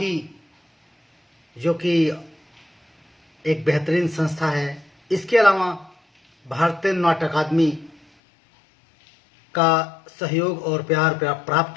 जो कि एक बेहतरीन संस्था है, इसके अलावा भारतीय नाट्य अकादमी का सहयोग और प्यार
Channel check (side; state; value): right; drops out; at 8.0 s